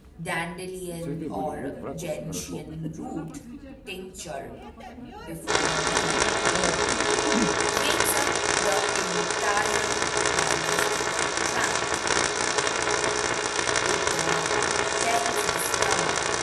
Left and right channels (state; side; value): identical; both; correlation 1.00